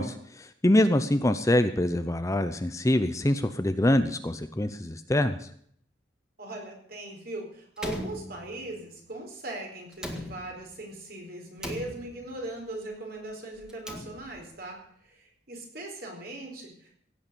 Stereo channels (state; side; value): normal; both; correlation 0.81